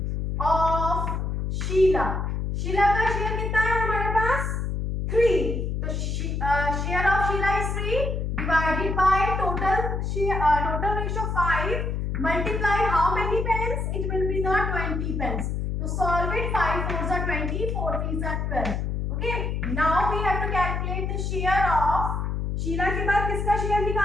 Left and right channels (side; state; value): left; noise; hum, 1 dB below the sound